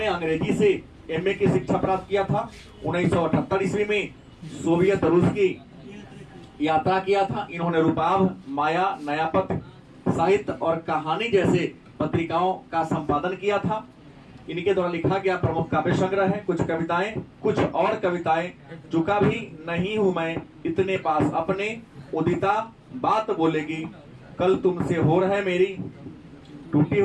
अंग्रेजी से एमए की शिक्षा प्राप्त किया था। 1978 ईस्वी में सोवियत रूस की यात्रा किया था। इन्होंने रूपाभ, माया, नयापथ, साहित्य और कहानी जैसे पत्रिकाओं का संपादन किया था। इनके द्वारा लिखा गया प्रमुख काव्य संग्रह है कुछ कविताएं, कुछ और कविताएं। चुका भी नहीं हूं मैं इतने पास अपने, उदिता बात बोलेगी, कल तुमसे हो रहा है मेरी, टूटी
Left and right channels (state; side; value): identical; both; correlation 1.00